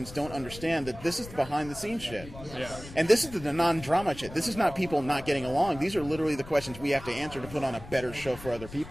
don't understand, that this is the behind-the-scenes shit. Yeah. And this is the non-drama shit. This is not people not getting along. These are literally the questions we have to answer to put on a better show for other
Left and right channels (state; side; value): noise; left; rumble, 15 dB below the sound